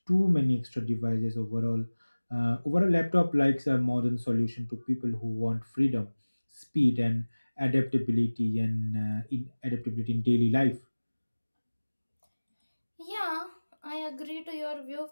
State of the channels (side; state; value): both; inverted; correlation -1.00